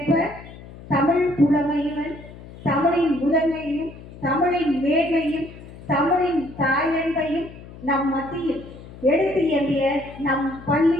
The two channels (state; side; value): noise; left; hum, 17 dB below the sound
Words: தமிழ் புலமையுடன் தமிழின் முதன்மையும் தமிழின் மேன்மையும் தமிழின் தாயன்பையும் நம் மத்தியில் எடுத்து எம்பிய நம்